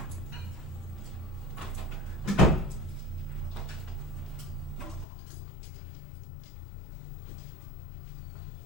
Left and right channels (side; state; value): right; drops out; at 5.1 s